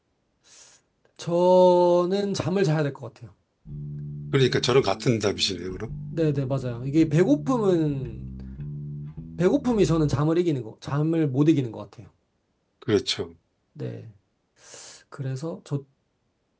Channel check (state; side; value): identical; both; correlation 1.00